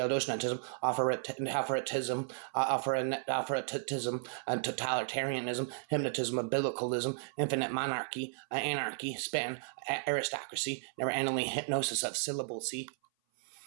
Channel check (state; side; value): silent; left; 55 dB below the other